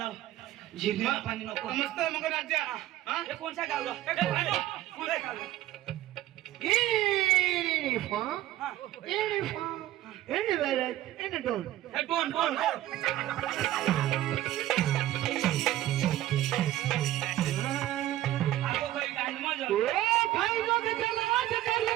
जिरण्याला पाणी नको मस्त मग राज्या हा हे कोणचा गावला कोणचा गावला Elephant, हा elephant, elephant, and a dog. हे दोन आगो काही गांडमा जा Oh, भाई लोग चलो आज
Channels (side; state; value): left; quieter; 14.5 dB